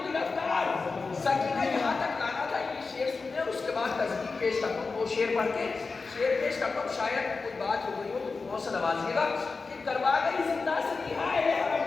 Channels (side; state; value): right; quieter; 4.3 dB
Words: گرفتار. سکینہ یہاں تک لانا تھا. یہ شعر سننے اور اس کے بعد تصدیق پیش کرتا ہوں. وہ شعر پڑھ کے شعر پیش کرتا ہوں. شاید کوئی بات ہو گئی ہو تو بہت سے نوازیے گا کہ کروا گئی زندہ سے رہا اہل حرم